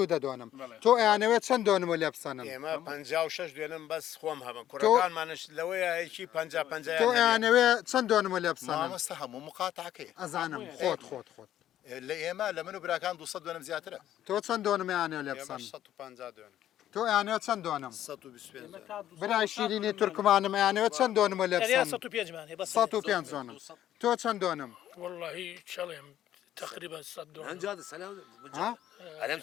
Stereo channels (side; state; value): right; quieter; 11.9 dB